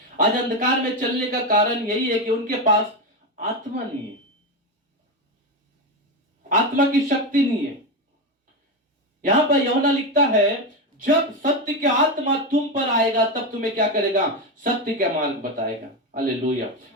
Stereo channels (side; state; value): both; normal; correlation 0.13